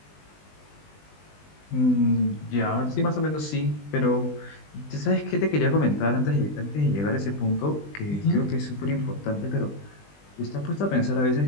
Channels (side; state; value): right; late; 20 ms